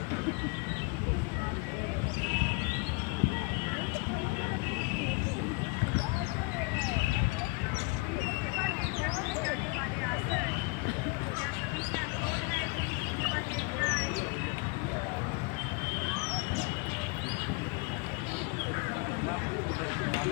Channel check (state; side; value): quieter; right; 26.6 dB